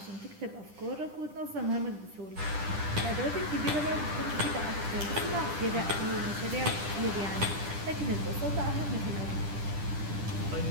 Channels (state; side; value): late; left; 10 ms